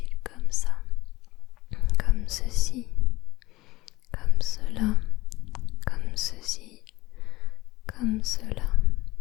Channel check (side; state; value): right; quieter; 19.3 dB